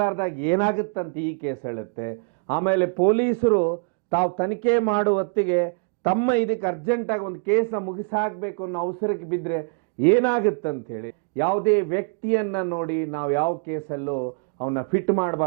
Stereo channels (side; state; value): left; quieter; 38.8 dB